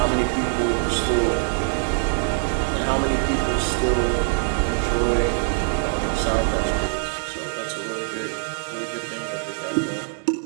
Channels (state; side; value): silent; left; digital silence